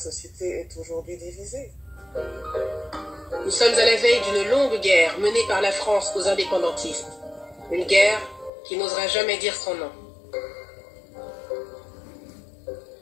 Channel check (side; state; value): right; drops out; at 8.5 s